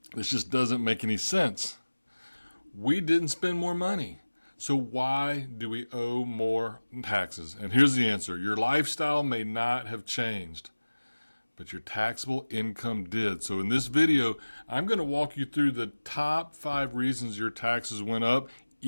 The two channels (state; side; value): inverted; both; correlation -1.00